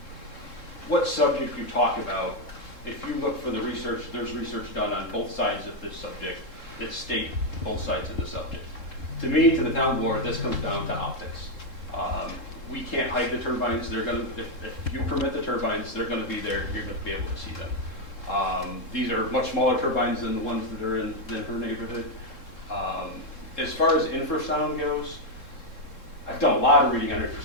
what subject you talk about, if you look for the research, there's research done on both sides of this subject that state both sides of the subject. To me, to the town board, this comes down to optics. We can't hide the turbines. They're going to, if you permit the turbines, they're going to be there. You're going to be able to see them. These are much smaller turbines than the ones that are in her neighborhood. As far as infrasound goes, I've done a lot of reading on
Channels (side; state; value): right; late; 3.7 ms